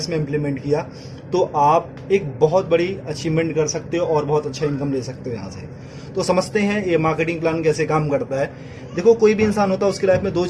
में इम्प्लीमेंट किया, तो आप एक बहुत बड़ी अचीवमेंट कर सकते हो और बहुत अच्छा इनकम ले सकते हो यहाँ से। तो समझते हैं ये मार्केटिंग प्लान कैसे काम करता है। देखो, कोई भी इंसान होता है, उसकी लाइफ में दो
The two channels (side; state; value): both; identical; correlation 1.00